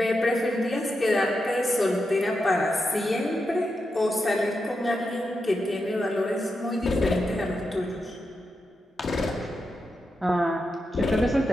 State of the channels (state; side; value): normal; both; correlation 0.87